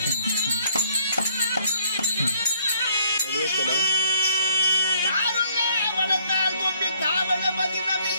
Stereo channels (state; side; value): inverted; both; correlation -0.64